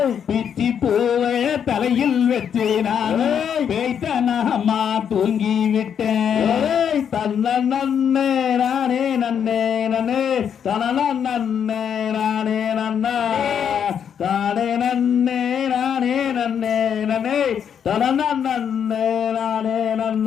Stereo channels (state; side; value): quieter; right; 8.1 dB